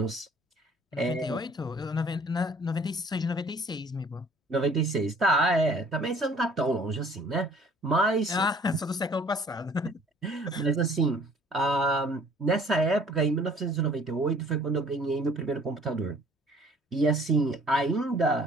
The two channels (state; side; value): normal; both; correlation 0.55